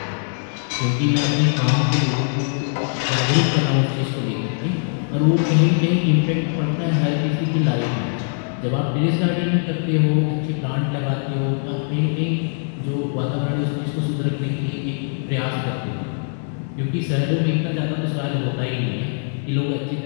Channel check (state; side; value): silent; right; 64 dB below the other